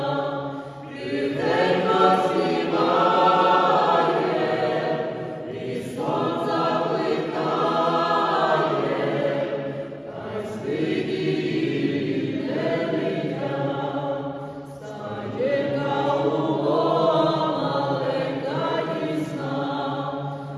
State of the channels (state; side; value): identical; both; correlation 1.00